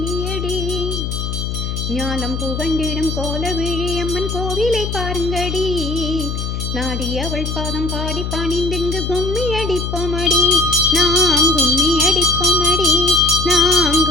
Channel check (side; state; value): left; noise; hum, 3 dB below the sound